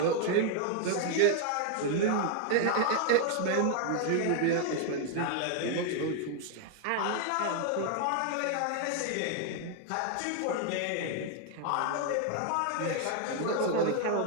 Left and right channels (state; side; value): different; both; correlation 0.00